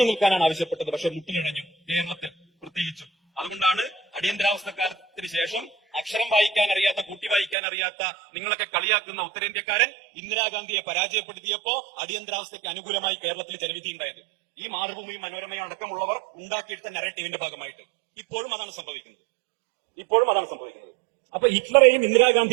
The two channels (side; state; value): left; drops out; at 7.6 s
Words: നിൽക്കാനാണ് ആവശ്യപ്പെട്ടത്, പക്ഷെ മുട്ടിലിഴഞ്ഞു കേരളത്തിൽ പ്രത്യേകിച്ചും. അതുകൊണ്ടാണ് അടിയന്തരാവസ്ഥക്കാലത്തിന് ശേഷം അക്ഷരം വായിക്കാൻ അറിയാത്ത, കൂട്ടി വായിക്കാൻ അറിയാത്ത നിങ്ങളൊക്കെ കളിയാക്കുന്ന ഉത്തരേന്ത്യക്കാരൻ ഇന്ദിരാഗാന്ധിയെ പരാജയപ്പെടുത്തിയപ്പോ അടിയന്തരാവസ്ഥയ്ക്ക് അനുകൂലമായി കേരളത്തിൽ ജനവിധിയുണ്ടായത്. ഈ മാതൃഭൂമി, മനോരമയും അടക്കമുള്ളവർ ഉണ്ടാക്കിയിട്ട് നരേറ്റീവിന്റെ ഭാഗമായിട്ട് ഇപ്പോഴും അതാണ് സംഭവിക്കുന്നത്. അപ്പൊ ഹിറ്റ്ലറെയും